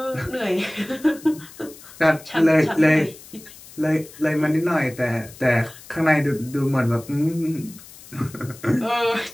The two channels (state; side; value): noise; left; hiss, 19 dB below the sound